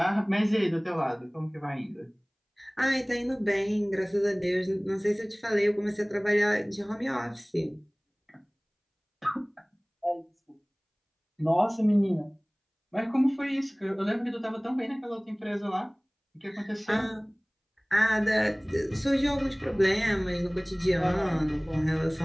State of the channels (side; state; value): both; identical; correlation 1.00